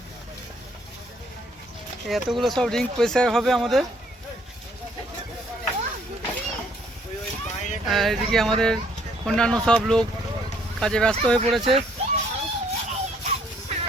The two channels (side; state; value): both; normal; correlation 0.65